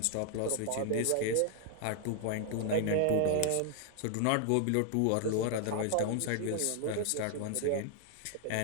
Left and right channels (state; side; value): different; both; correlation 0.00